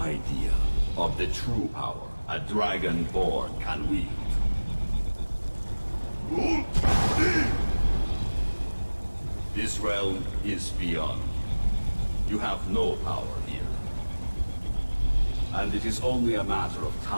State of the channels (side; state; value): both; inverted; correlation -1.00